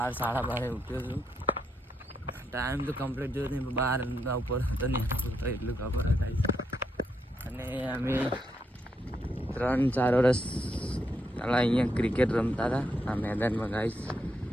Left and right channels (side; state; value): both; normal; correlation 0.79